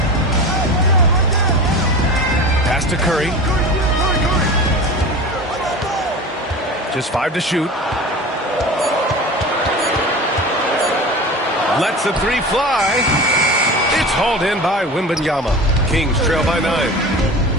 Pass to Curry. Just 5 to shoot. Lets the 3 fly. It's hauled in by Wembanyama. Kings trail by 9.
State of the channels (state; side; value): normal; both; correlation 0.33